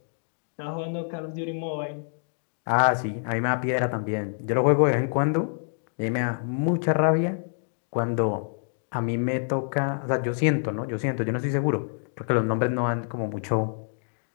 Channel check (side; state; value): right; silent; digital silence